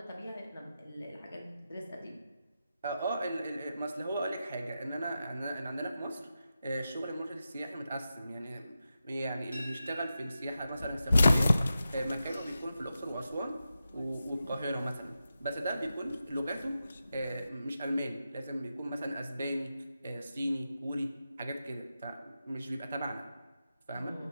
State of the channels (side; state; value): both; inverted; correlation -0.91